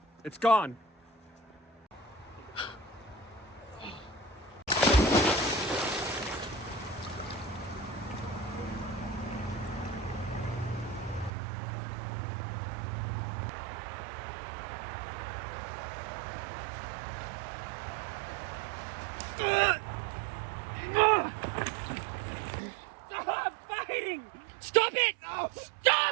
It's gone. Stop fighting! Stop it!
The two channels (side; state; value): left; drops out; at 11.3 s